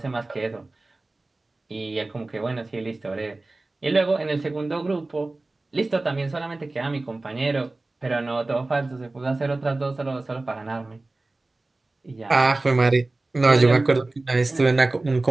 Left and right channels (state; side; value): quieter; left; 3.1 dB